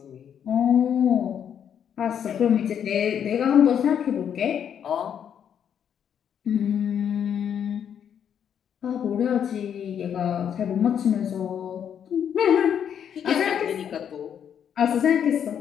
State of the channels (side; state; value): right; quieter; 8.6 dB